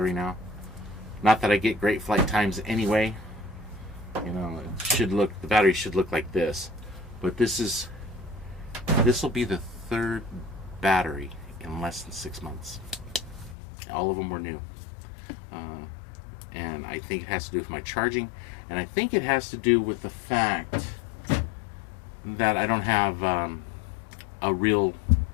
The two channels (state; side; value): drops out; right; at 13.6 s